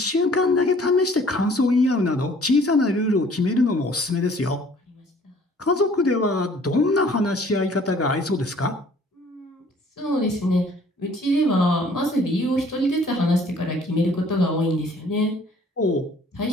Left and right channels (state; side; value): normal; both; correlation 0.55